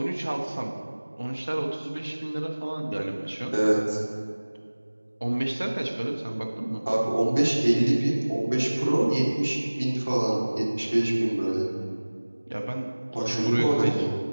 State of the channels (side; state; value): both; inverted; correlation -1.00